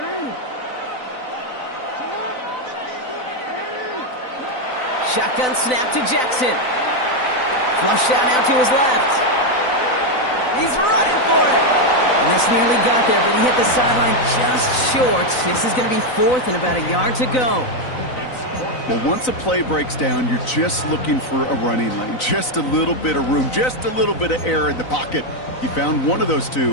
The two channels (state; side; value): late; right; 4.0 ms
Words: Shotgun snap to Jackson. Flush out now to his left. He's running for it. And this nearly got there, but he hit the sideline just short. This is going to be 4th and about a yard to go. Well, once a play breaks down, you're just looking for a running lane. Just a little bit of room, just a little bit of air in the pocket. He found one of those